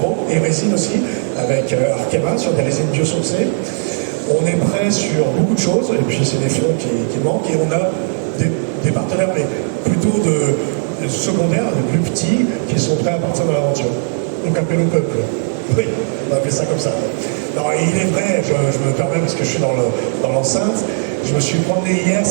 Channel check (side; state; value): left; silent; 65 dB below the other